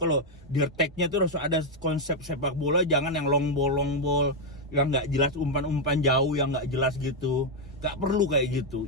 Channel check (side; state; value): both; normal; correlation 0.00